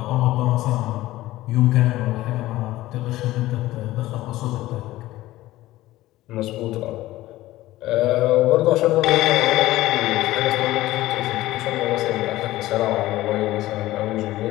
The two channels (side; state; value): right; quieter; 16.5 dB